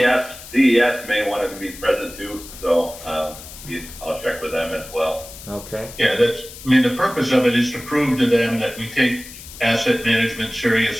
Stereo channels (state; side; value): noise; left; hiss, 15 dB below the sound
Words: DES may want to be present too, so I'll check with them as well. Okay. Yeah, the purpose of it is to prove to them that we take asset management